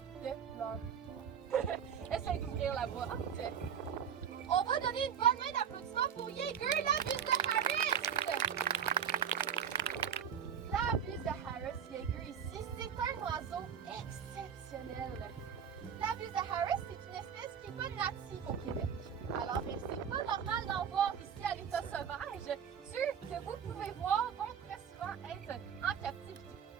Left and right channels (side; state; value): left; quieter; 7.9 dB